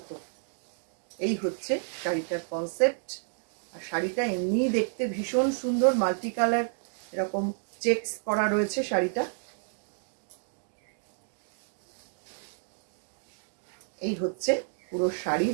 এই হচ্ছে শাড়িটার কনসেপ্ট। আর শাড়িটা এমনি দেখতে ভীষণ সুন্দর, মাল্টি কালার এরকম চেকস করা রয়েছে শাড়িটা। এই হচ্ছে পুরো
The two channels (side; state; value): left; silent; digital silence